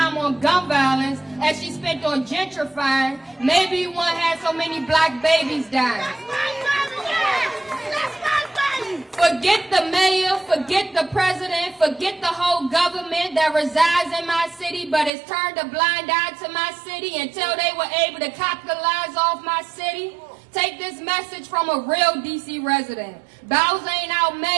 on gun violence as she spent on gentrifying, maybe we won't have so many black babies dying. Forget the mayor, forget the president, forget the whole government that resides in my city but has turned a blind eye to my city until they were able to capitalize off my city. Take this message from a real DC resident. Bowser ain't our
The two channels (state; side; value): drops out; left; at 15.1 s